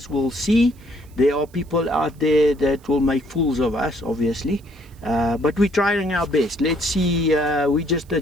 will see. There are people out there that will make fools of us, obviously. But we're trying our best. Let's see, we're just the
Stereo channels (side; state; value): right; noise; hiss, 30 dB below the sound